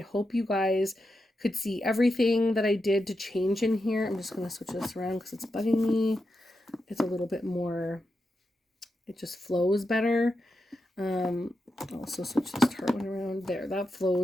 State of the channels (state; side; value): normal; both; correlation 0.87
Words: hope you guys could see everything that I did to change in here. I'm just going to switch this around because it's bugging me. It's a little bit more, it just flows better. I'll also switch this Tarte one around there. That